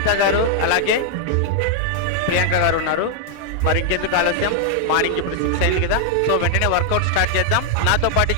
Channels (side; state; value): both; different; correlation 0.00